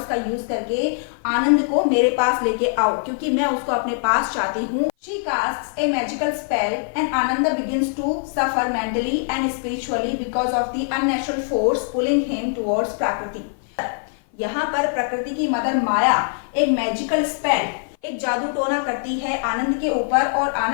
का यूज करके आनंद को मेरे पास लेके आओ, क्योंकि मैं उसको अपने पास चाहती हूँ। She casts a magical spell and Ananda begins to suffer mentally and spiritually because of the unnatural force pulling him towards Prakriti. यहाँ पर प्रकृति की मदर माया एक मैजिकल स्पेल, एक जादू टोना करती है आनंद के ऊपर और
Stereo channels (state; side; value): silent; right; 55 dB below the other